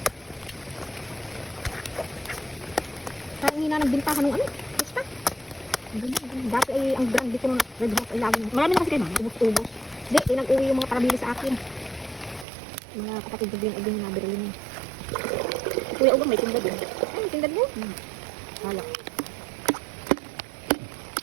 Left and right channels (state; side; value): drops out; left; at 12.5 s